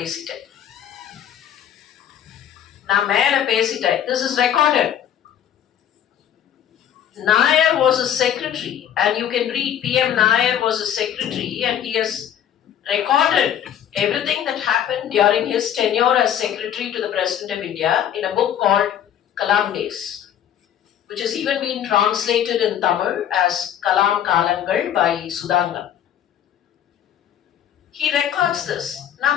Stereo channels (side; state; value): right; quieter; 10.0 dB